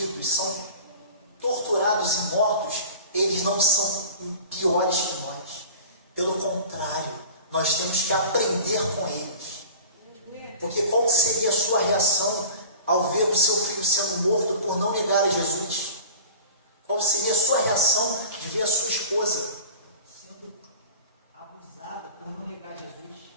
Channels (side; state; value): both; inverted; correlation -0.39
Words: são torturados e mortos, eles não são piores que nós. Pelo contrário, nós temos que aprender com eles. Porque qual seria a sua reação ao ver o seu filho sendo morto por não negar a Jesus? Qual seria a sua reação de ver a sua esposa sendo abusada por não negar Jesus?